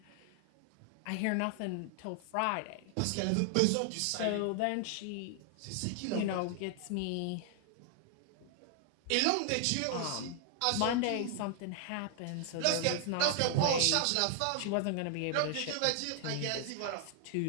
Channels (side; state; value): both; different; correlation 0.00